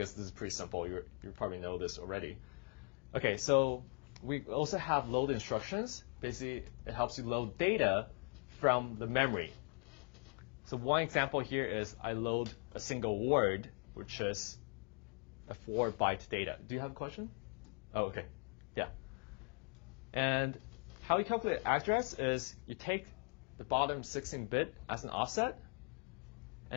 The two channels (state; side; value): quieter; right; 39.9 dB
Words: this is pretty simple. You probably know this already. Okay, so we also have load instructions. Basically, it helps you load data from the memory. So one example here is I load a single word, which is a 4-byte data. Do you have a question? Oh, okay. Yeah. And how you calculate address is you take the bottom 16-bit as an offset